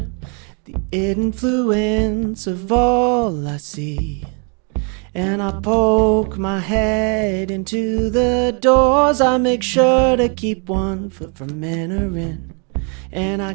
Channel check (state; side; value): quieter; left; 37.4 dB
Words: the influence of all I see. And I poke my head into the doors. I make sure to keep one foot from entering. And I